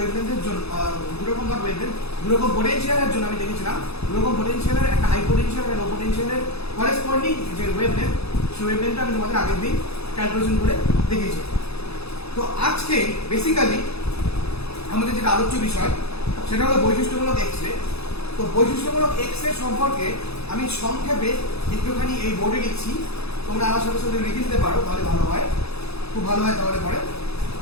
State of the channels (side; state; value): right; late; 0.79 ms